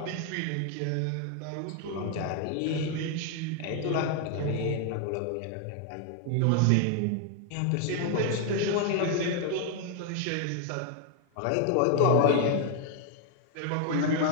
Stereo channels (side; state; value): both; different; correlation 0.00